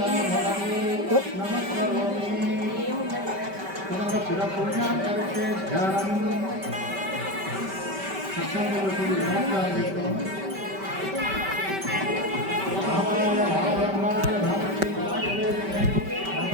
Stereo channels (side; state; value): left; late; 5.2 ms